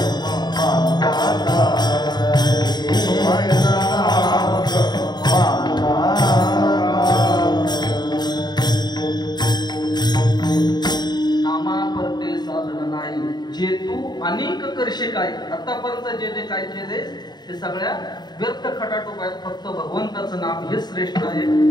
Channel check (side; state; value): right; late; 0.20 ms